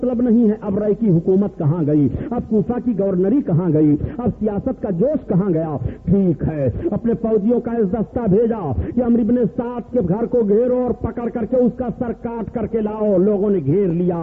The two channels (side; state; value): both; identical; correlation 1.00